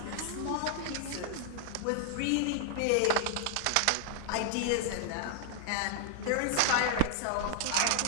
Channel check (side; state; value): both; different; correlation 0.00